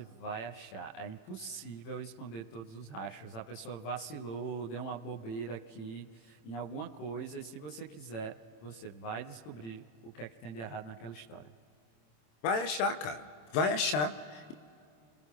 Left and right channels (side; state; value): right; late; 27 ms